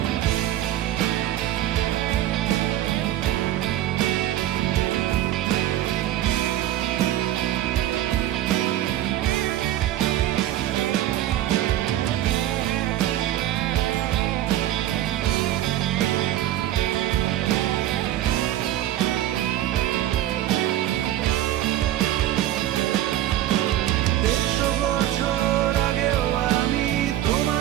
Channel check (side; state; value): left; quieter; 13.1 dB